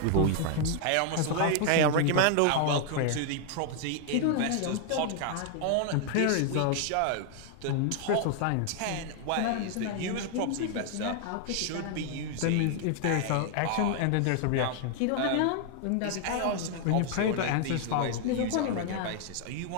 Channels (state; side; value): different; both; correlation 0.00